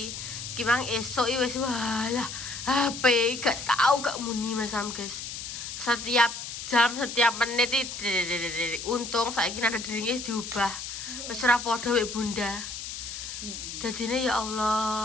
Kimang esok wis walah HP gak tahu gak muni masam guys. Setiap jam, setiap menit untung saiki ada dirinya diubah. Wis ora padha wek Bunda. Dadine ya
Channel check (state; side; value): noise; left; hiss, 8 dB below the sound